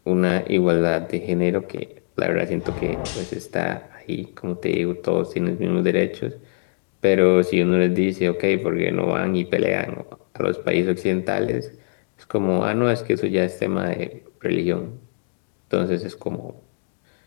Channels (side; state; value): right; silent; digital silence